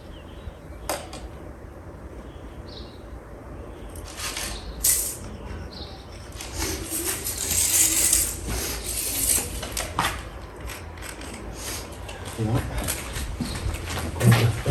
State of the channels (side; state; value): both; identical; correlation 1.00